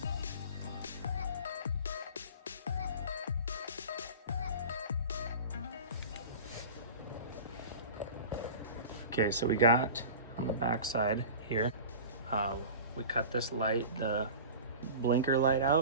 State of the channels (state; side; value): inverted; both; correlation -0.36